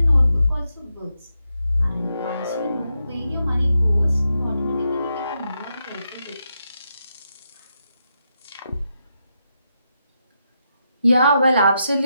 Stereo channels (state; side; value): inverted; both; correlation -0.84